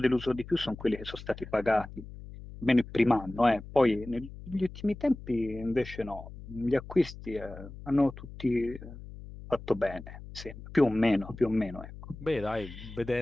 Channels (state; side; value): noise; left; hum, 14 dB below the sound